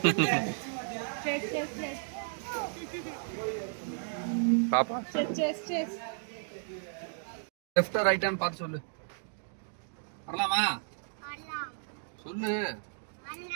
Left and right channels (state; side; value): silent; left; digital silence